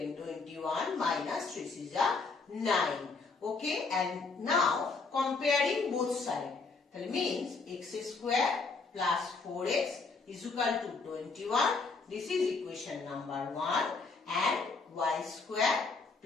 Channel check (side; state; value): right; quieter; 4.2 dB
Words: 21 minus 3 is 9. Okay, and now comparing both sides. That means x square plus 4x is equal to 21. This is equation number 1. And y square